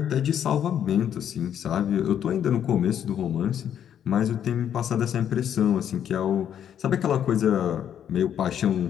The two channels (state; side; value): quieter; right; 9.5 dB